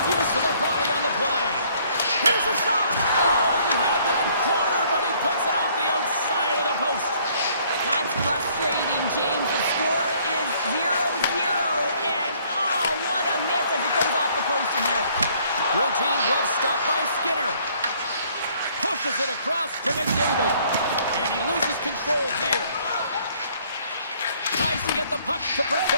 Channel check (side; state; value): both; inverted; correlation -0.62